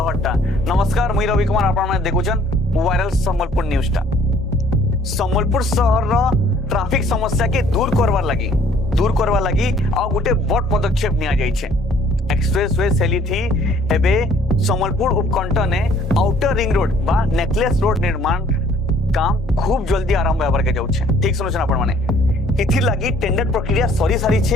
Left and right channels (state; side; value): normal; both; correlation 0.58